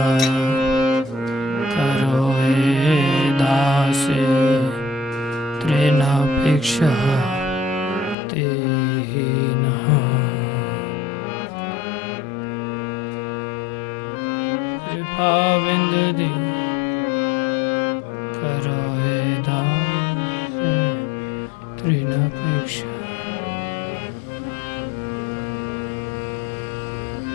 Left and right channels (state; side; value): drops out; right; at 8.2 s